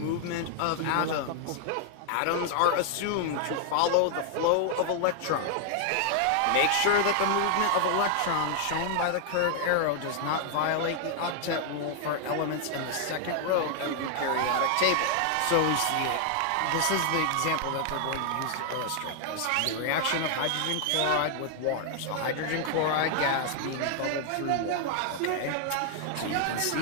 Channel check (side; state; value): both; different; correlation 0.00